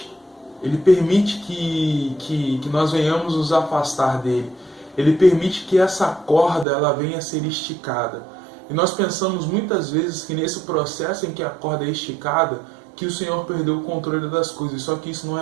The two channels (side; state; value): left; drops out; at 6.7 s